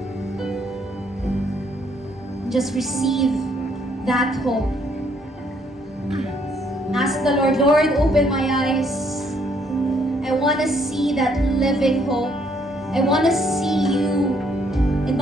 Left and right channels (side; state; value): both; normal; correlation 0.68